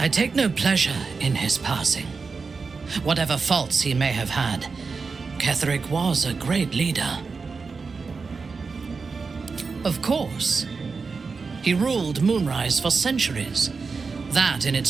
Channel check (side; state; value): left; quieter; 4.7 dB